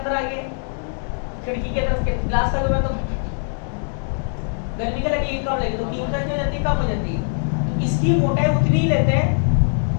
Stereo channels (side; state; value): right; silent; digital silence